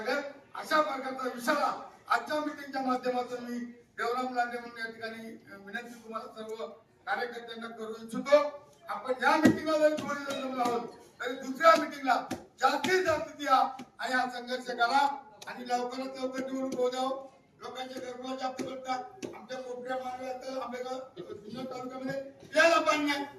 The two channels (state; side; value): identical; both; correlation 1.00